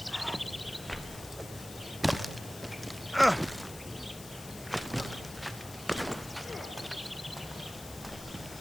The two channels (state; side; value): noise; left; hiss, 14 dB below the sound